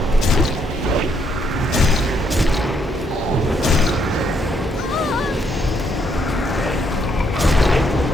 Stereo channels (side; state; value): both; normal; correlation 0.73